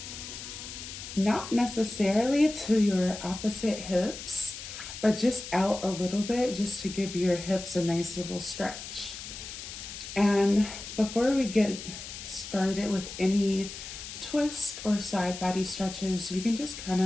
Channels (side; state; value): left; noise; hiss, 10 dB below the sound